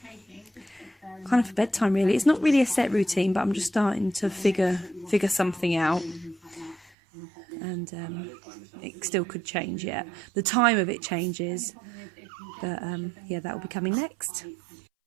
of for bedtime really. It's not really a set routine, but I'm just starting to figure something out. And it still could change yet. The time of it changes. But yeah, that will be coming next.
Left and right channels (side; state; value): left; drops out; at 6.9 s